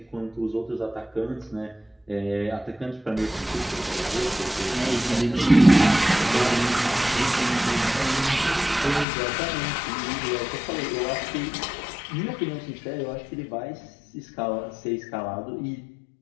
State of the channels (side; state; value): right; drops out; at 9.1 s